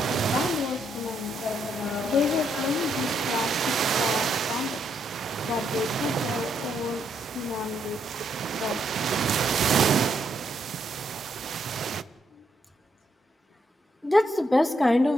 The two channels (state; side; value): normal; both; correlation 0.76